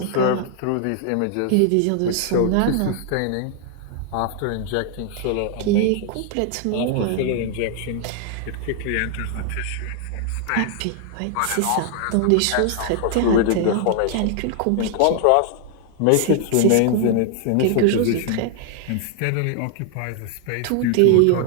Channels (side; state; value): both; different; correlation 0.00